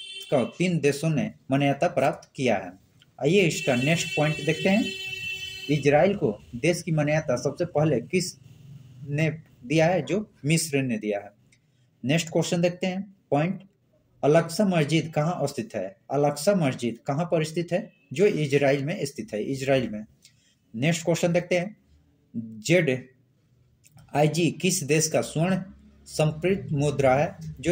का 3 देशों ने मान्यता प्राप्त किया है। आइए इसका नेक्स्ट पॉइंट देखते हैं। इजराइल को देश की मान्यता सबसे पहले किस ने दिया है? जो मिस्र ने दिया है। नेक्स्ट क्वेश्चन देखते हैं। पॉइंट अल-अक्सा मस्जिद कहाँ स्थित है? अल-अक्सा मस्जिद कहाँ पर स्थित है? जो इजराइल में स्थित है, इजराइल में। नेक्स्ट क्वेश्चन देखते हैं। ZIG किस देश का स्वर्ण संप्रेरित मुद्रा है? जो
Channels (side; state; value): both; identical; correlation 1.00